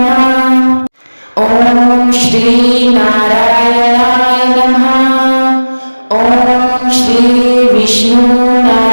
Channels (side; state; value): both; inverted; correlation -1.00